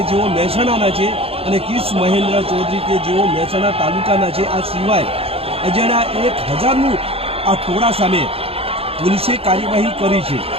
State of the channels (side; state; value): left; late; 0.28 ms